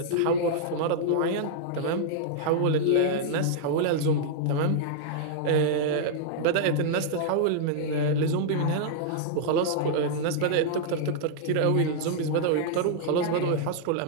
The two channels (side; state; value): both; different; correlation -0.01